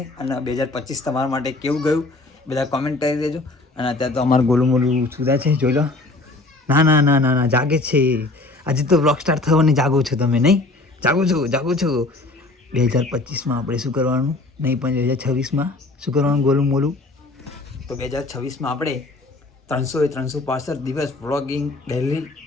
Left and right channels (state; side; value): quieter; right; 3.1 dB